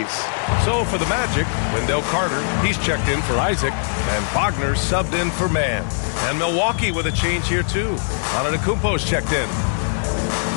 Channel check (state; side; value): silent; right; 65 dB below the other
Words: So for the Magic, Wendell Carter, he's checked in for Isaac, and Wagner subbed in for Mann. And Milwaukee with a change here too. Antetokounmpo's checked in.